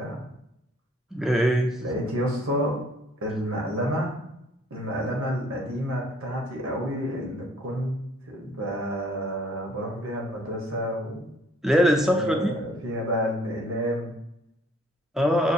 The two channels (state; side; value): normal; both; correlation 0.60